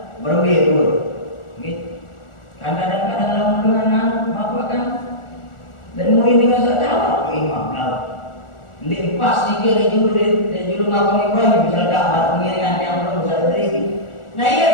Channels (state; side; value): late; right; 1.4 ms